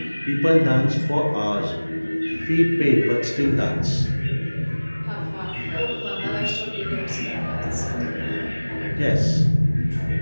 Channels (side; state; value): both; inverted; correlation -1.00